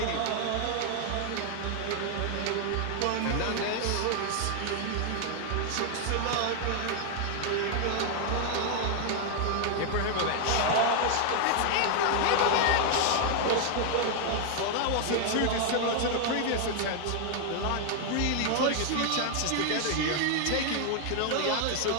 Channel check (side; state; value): both; different; correlation 0.00